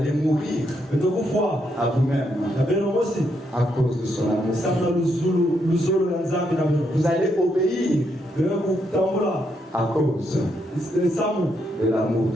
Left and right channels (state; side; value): normal; both; correlation 0.78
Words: mourir à vous-même à cause de son amour. Vous allez obéir à cause de l'amour